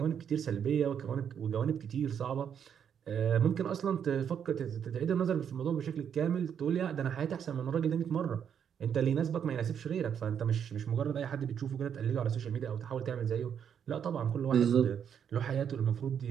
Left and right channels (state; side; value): quieter; left; 8.2 dB